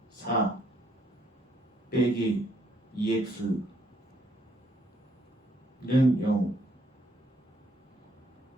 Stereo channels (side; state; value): both; normal; correlation 0.70